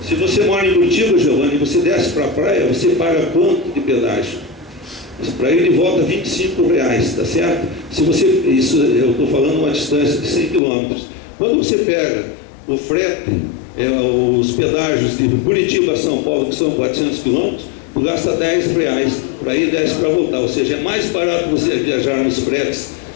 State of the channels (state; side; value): drops out; right; at 10.6 s